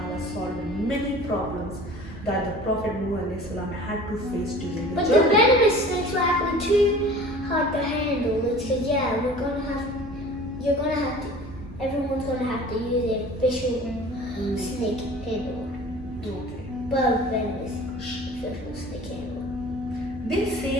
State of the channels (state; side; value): normal; both; correlation 0.43